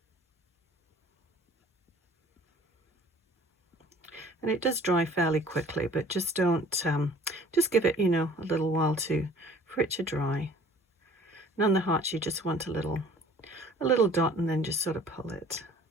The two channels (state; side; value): normal; both; correlation 0.51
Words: And it does dry fairly quickly, but just don't, just give it, you know, a little while for it to dry. And on the hearts, you just want a little dot and then just sort of pull it.